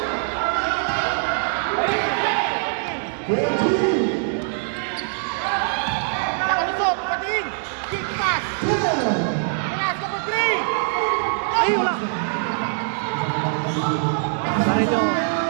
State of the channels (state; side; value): silent; left; digital silence